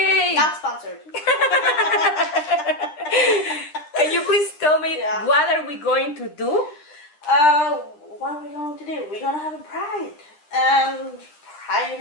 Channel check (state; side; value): late; right; 10 ms